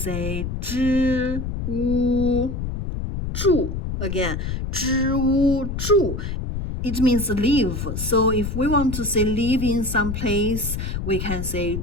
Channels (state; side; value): noise; left; rumble, 4 dB below the sound